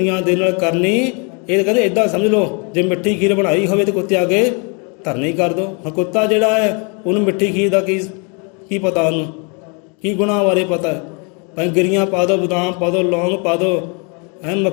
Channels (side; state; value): right; quieter; 34.6 dB